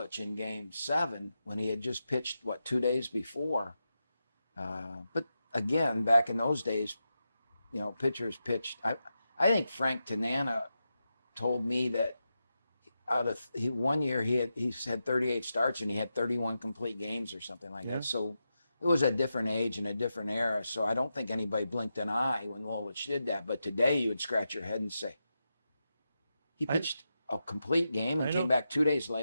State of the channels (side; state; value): both; inverted; correlation -0.88